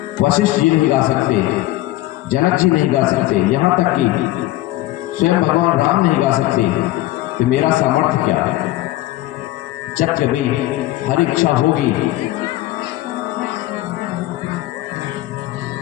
वशिष्ठ जी नहीं गा सकते, जनक जी नहीं गा सकते, यहाँ तक कि स्वयं भगवान राम नहीं गा सकते, तो मेरा सामर्थ्य क्या है। जब कभी हर इच्छा होगी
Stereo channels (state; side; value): quieter; right; 16.8 dB